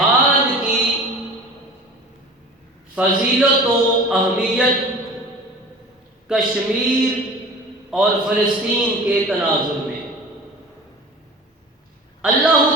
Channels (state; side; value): normal; both; correlation 0.39